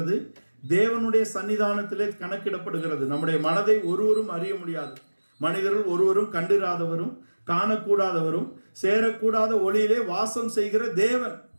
தேவனுடைய சன்னிதானத்திலே கணக்கிடப்படுகிறது. நம்முடைய மனதை ஒருவரும் அறிய முடியாது. மனிதர்கள் ஒருவரும் கண்டிராதவரும் காணக்கூடாதவரும் சேரக்கூடாத ஒளியிலே வாசம் செய்கிற தேவன்.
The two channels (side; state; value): both; inverted; correlation -1.00